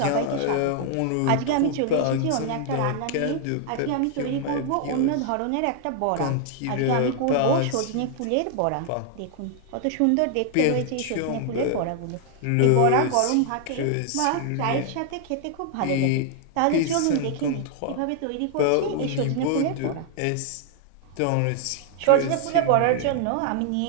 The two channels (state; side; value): different; both; correlation 0.00